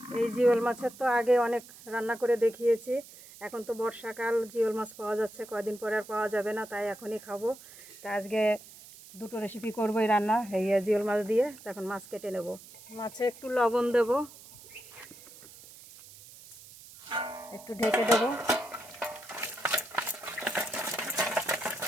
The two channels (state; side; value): noise; right; hiss, 19 dB below the sound